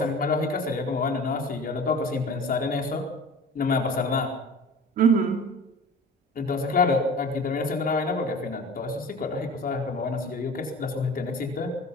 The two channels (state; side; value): normal; both; correlation 0.40